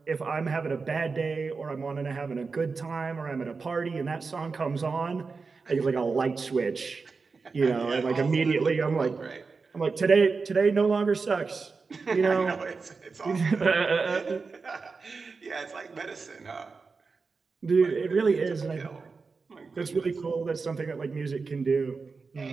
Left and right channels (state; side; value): quieter; left; 4.6 dB